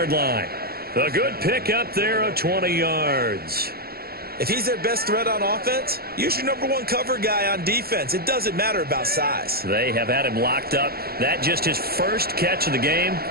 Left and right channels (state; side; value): late; left; 0.45 ms